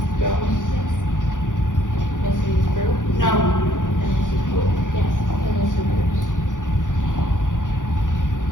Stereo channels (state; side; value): late; right; 0.88 ms